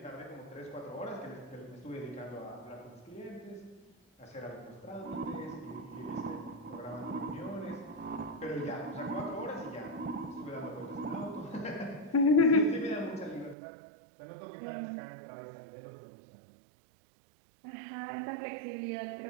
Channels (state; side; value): drops out; left; at 13.6 s